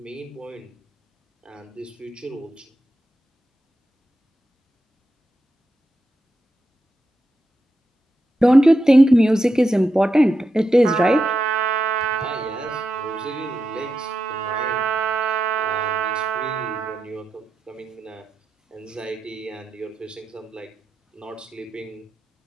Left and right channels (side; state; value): both; normal; correlation 0.87